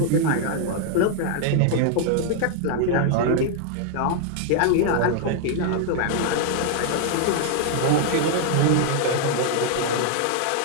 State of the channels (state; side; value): different; both; correlation 0.00